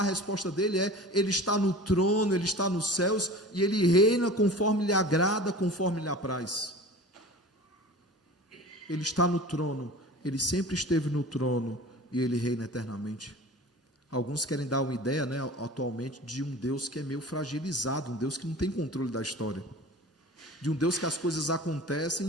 resposta dele é: ele está no trono, ele está nos céus, e ele reina conforme lhe agrada, conforme lhe apraz. Ele está no trono, ele sempre esteve no trono, e ele reina eternamente. Alguns querem dar uma ideia, né, atualmente, de um Deus que é meio fragilizado, um Deus que não tem controle da história, de um Deus que as coisas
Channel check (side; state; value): both; normal; correlation 0.38